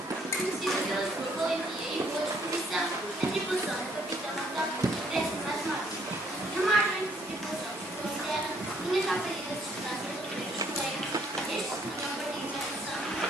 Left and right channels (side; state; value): both; normal; correlation 0.66